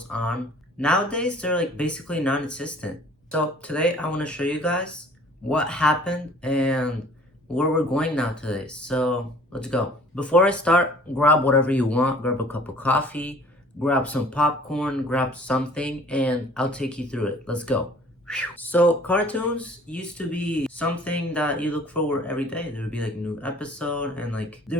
on. Nowadays, they're like basically non-existent. So today I want to show you guys what happened and where we're going now today. So let's go. Before I start, grab whatever you want. Grab a cup of coffee, grab some popcorn, grab something, and I'll take you through it. Let's go. So cartoons used to be something that you look forward every day. There would be like new episode and like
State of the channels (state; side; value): normal; both; correlation 0.52